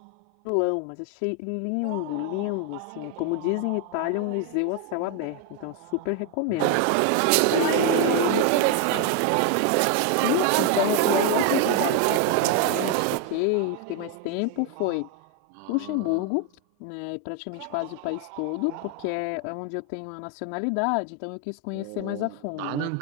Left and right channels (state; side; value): different; both; correlation 0.01